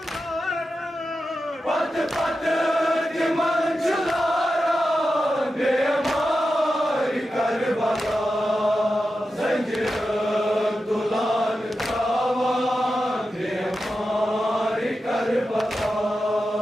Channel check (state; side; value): normal; both; correlation 0.90